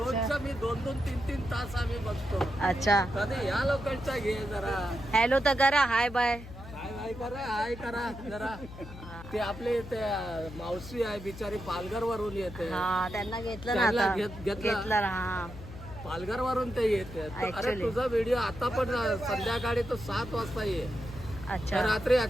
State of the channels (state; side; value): noise; left; hum, 14 dB below the sound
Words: मी 2-2, 3-3 तास आम्ही बघतो. अच्छा, कधी या लोकांचा घे जरा. हॅलो तर करा, हाय बाय. हाय करा जरा. ते आपले ते मावशी आहे बिचारी, पालघर वरून येते. हा, त्यांना घेतलं ना त्यांना आता. घेतलं. हा, पालघर वरून ते येते. अरे Actually. तुझा व्हिडिओ आता पण संध्याकाळी तो 7 वाजता ये. अच्छा. रात्री